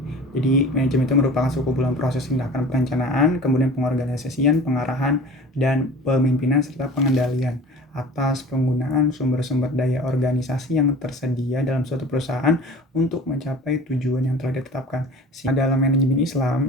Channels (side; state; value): both; normal; correlation 0.40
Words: Jadi manajemen itu merupakan sekumpulan proses tindakan perencanaan, kemudian pengorganisasian, pengarahan, dan pemimpinan serta pengendalian atas penggunaan sumber-sumber daya organisasi yang tersedia dalam suatu perusahaan untuk mencapai tujuan yang telah ditetapkan. Dalam manajemen